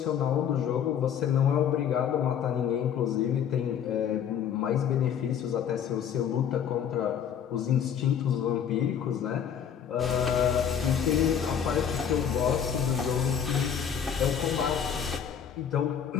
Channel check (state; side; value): quieter; right; 8.3 dB